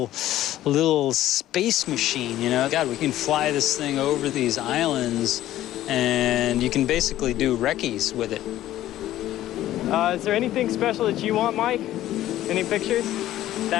space machine, you know? God, we can fly this thing over these islands, and you can basically do recce's with it. Is there anything special that you want, Mike? Any pictures?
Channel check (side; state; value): right; quieter; 13.8 dB